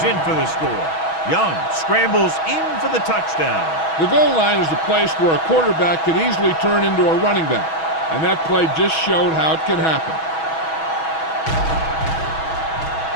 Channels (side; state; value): right; late; 6.2 ms